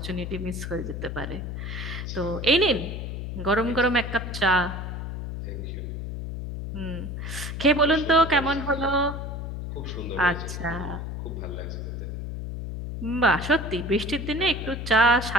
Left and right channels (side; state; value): left; noise; hum, 6 dB below the sound